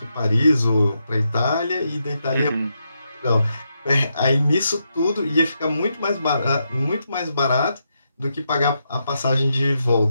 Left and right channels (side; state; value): both; inverted; correlation -0.83